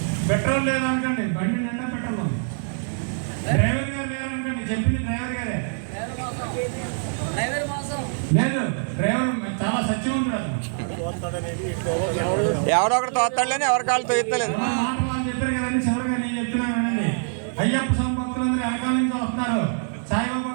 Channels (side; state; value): left; silent; digital silence